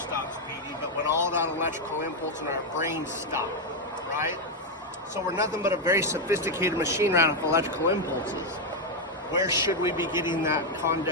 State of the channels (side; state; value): both; normal; correlation 0.03